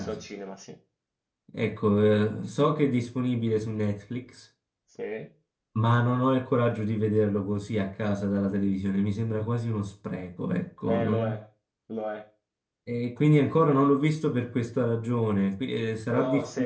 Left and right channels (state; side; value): identical; both; correlation 1.00